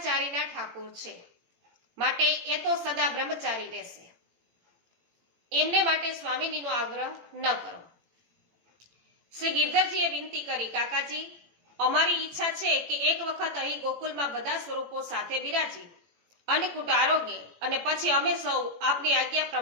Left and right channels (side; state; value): left; late; 18 ms